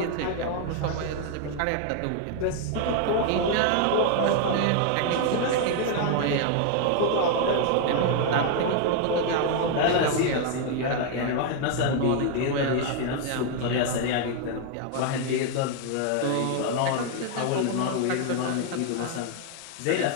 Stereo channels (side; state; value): both; different; correlation 0.00